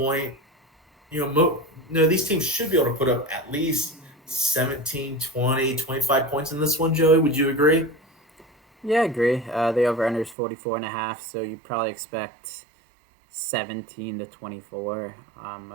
These teams should be able to put up at least 17, 20, 25 points in this one, Joey. Would you agree? Yeah, I agree. The over under is 44.5, so you probably expect 17 to 24,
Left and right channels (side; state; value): left; drops out; at 10.4 s